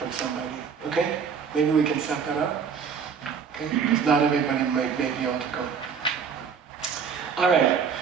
somebody. Okay? Maybe we can set that up. Okay? Because not everybody may be able to go. Alright.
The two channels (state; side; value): quieter; left; 6.5 dB